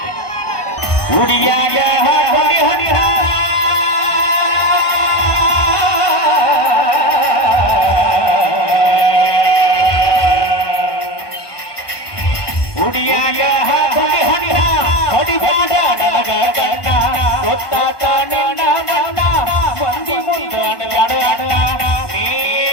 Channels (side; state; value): right; late; 1.2 ms